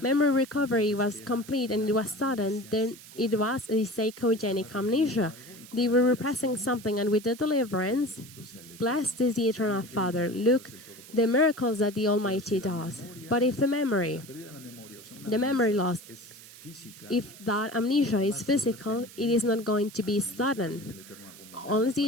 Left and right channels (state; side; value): noise; right; hiss, 18 dB below the sound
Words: recovery was complete and it was sudden, then it was a psychogenic amnesia. They were repressing something, and with the deliverance, blessed is the Eternal Father. Look, the miracles that the Almighty does. But if the memory loss, if that amnesia is physical, it is not going to be sudden. Unless the